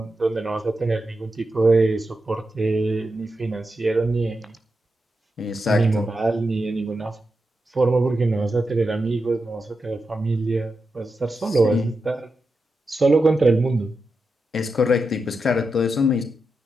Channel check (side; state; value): both; normal; correlation 0.88